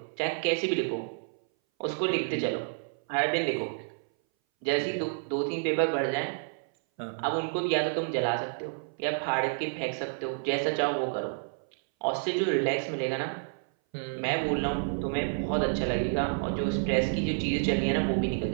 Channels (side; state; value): left; silent; 58 dB below the other